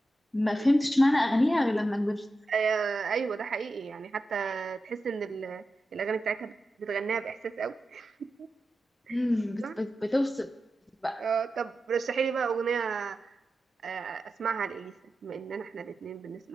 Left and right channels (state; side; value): normal; both; correlation 0.91